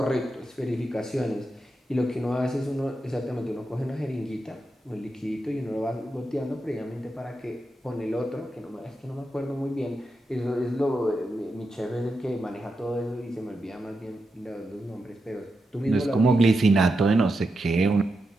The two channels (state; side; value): normal; both; correlation 0.87